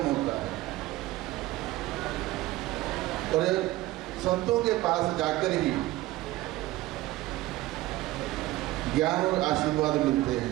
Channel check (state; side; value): quieter; left; 17.5 dB